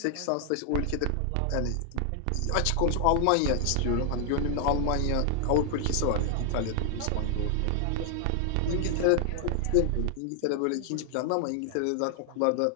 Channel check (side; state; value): both; different; correlation 0.00